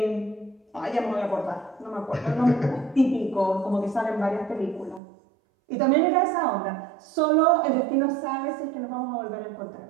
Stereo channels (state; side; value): drops out; left; at 5.0 s